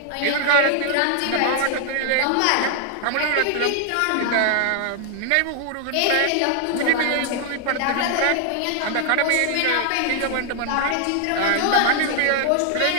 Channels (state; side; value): different; both; correlation 0.00